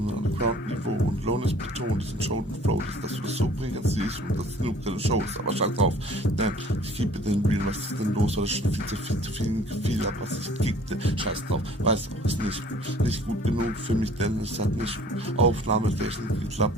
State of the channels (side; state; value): both; normal; correlation 0.52